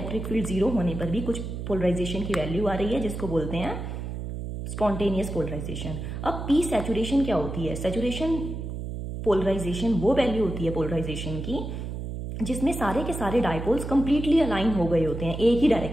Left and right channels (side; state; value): right; noise; hum, 6 dB below the sound